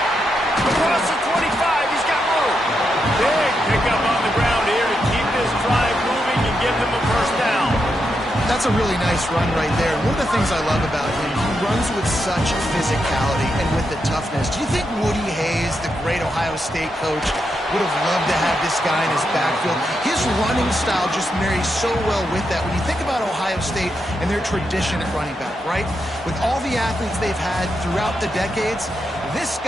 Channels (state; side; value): normal; both; correlation 0.84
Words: Across the 25, he's got room. Big pickup on the ground here to keep this drive moving and give them a first down. That's a really nice run right there. One of the things I love about him, he runs with such physicality and with the toughness. Do you think Woody Hayes, the great Ohio State coach, would have loved to have this guy in his backfield? His running style just marries so well with that. When you think about Ohio State and their tradition at running back, right? With all the athletes they've had throughout the decades, this